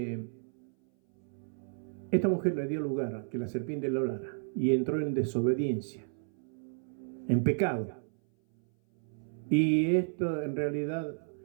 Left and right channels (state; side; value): silent; left; 56 dB below the other